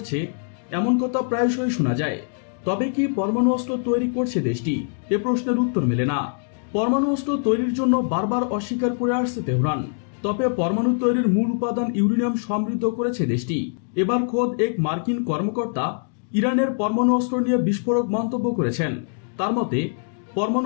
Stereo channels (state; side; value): silent; right; digital silence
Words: এমন কথা প্রায়শই শোনা যায়। তবে কি পরমাণু অস্ত্র তৈরি করছে দেশটি? এ প্রশ্নের উত্তর মেলে না। পরমাণু অস্ত্র তৈরির জন্য বারবার অস্বীকার করে আসছে তেহরান। তবে পরমাণু তৈরির মূল উপাদান ইউরেনিয়াম সমৃদ্ধ করেছে দেশটি। এবার খোদ এক মার্কিন কর্মকর্তা ইরানের পরমাণু অস্ত্র নিয়ে বিস্ফোরক মন্তব্য করেছেন। তার মতে,